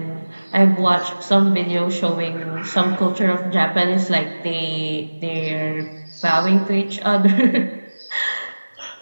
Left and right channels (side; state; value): both; inverted; correlation -1.00